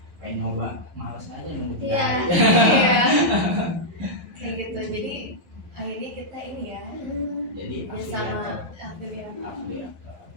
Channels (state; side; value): late; left; 11 ms